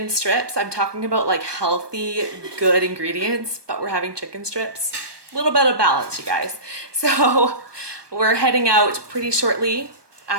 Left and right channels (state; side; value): late; left; 1.2 ms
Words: strips. I'm talking about like healthy, good ingredients, but we're having chicken strips. A little bit of balance, you guys. So we're heading out pretty shortly